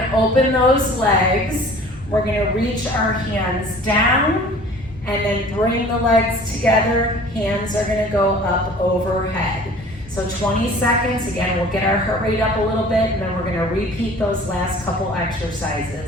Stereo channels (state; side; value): normal; both; correlation 0.47